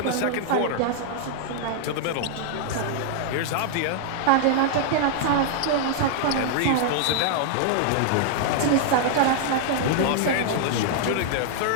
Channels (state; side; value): different; both; correlation -0.01